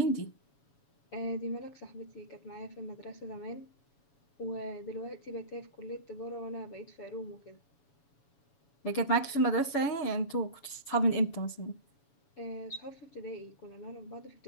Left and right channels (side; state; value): right; late; 7.1 ms